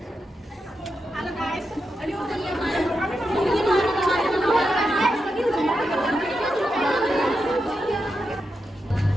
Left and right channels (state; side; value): normal; both; correlation 0.87